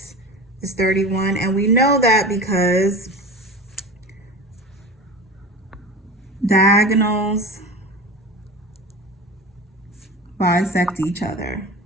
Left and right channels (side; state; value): both; normal; correlation 0.31